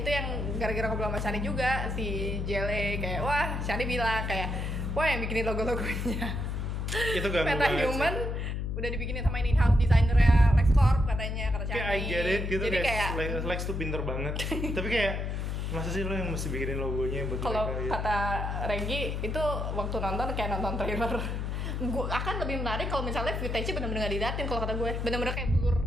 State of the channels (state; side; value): noise; left; hum, 2 dB below the sound